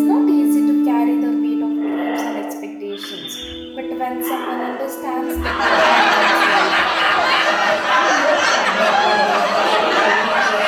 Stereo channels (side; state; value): both; identical; correlation 1.00